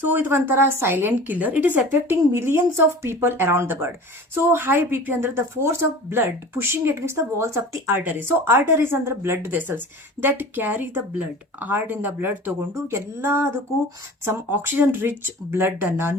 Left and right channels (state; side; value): normal; both; correlation 0.39